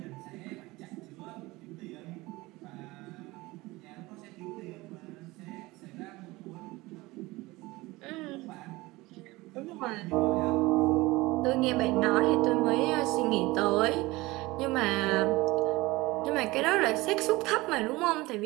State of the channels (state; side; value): quieter; left; 20.9 dB